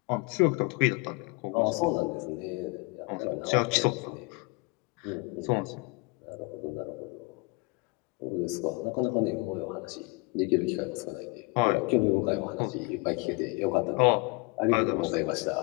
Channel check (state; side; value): quieter; right; 26.8 dB